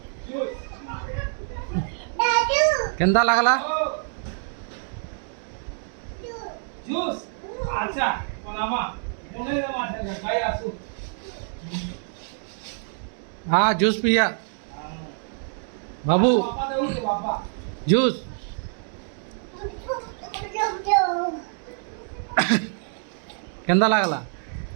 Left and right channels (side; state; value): left; silent; 58 dB below the other